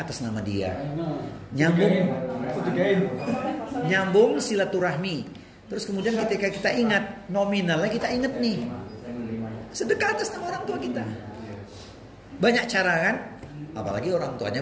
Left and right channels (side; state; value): both; identical; correlation 1.00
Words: atas nama dia, nyambung silaturahmi. Terus kemudian ketika kita ingat nominalnya, kita ingat nih, sedekah atas nama orang tua kita. Banyak cara kan? Apalagi orang